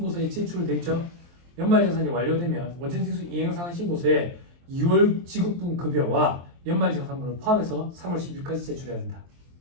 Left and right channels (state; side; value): late; left; 23 ms